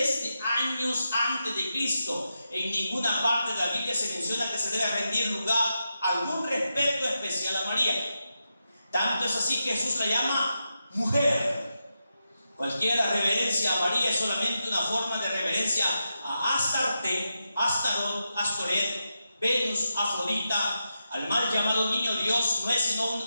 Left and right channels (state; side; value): inverted; both; correlation -0.87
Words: de años antes de Cristo. En ninguna parte de la Biblia se menciona que se debe rendir lugar, algún respeto especial a María. Tanto es así que Jesús la llama mujer. Cualquier reverencia a María es solamente una forma de reverencia a Astarte, Astarot, Astoret, Venus, Afrodita. Al mal llamado niño Dios no es sino